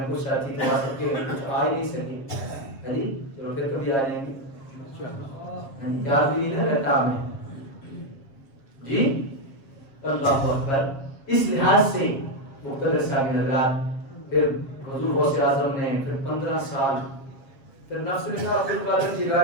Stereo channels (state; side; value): late; right; 7.4 ms